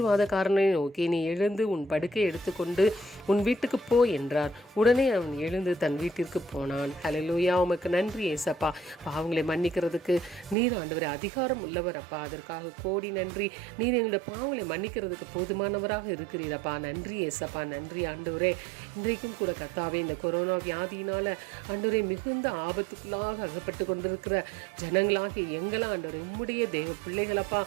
நோக்கி, நீ எழுந்து உன் படுக்கை எடுத்துக்கொண்டு உன் வீட்டுக்கு போ என்றார். உடனே அவன் எழுந்து தன் வீட்டிற்கு போனான். ஹல்லேலூயா. உமக்கு நன்றி ஏசப்பா. பாவங்களை மன்னிக்கிறதுக்கு நீர் ஆண்டவரே அதிகாரம் உள்ளவர் அப்பா. அதற்காக கோடி நன்றி. நீர் எங்களுடைய பாவங்களை மன்னிக்கிறதுக்கு போதுமானவராக இருக்கிறீரப்பா. நன்றி ஏசப்பா. நன்றி ஆண்டவரே. இன்றைக்கும் கூட கர்த்தாவே, இந்த கொரோனா வியாதியினால ஆண்டவரே மிகுந்த ஆபத்துக்குள்ளாக அகப்பட்டு கொண்டிருக்கிற ஜனங்களாகி எங்களா ஆண்டவரே உம்முடைய தேவ பிள்ளைகளப்பா.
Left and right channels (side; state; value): left; drops out; at 10.6 s